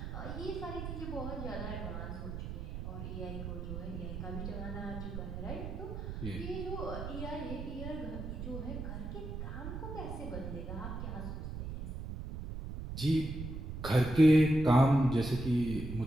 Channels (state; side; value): noise; right; rumble, 6 dB below the sound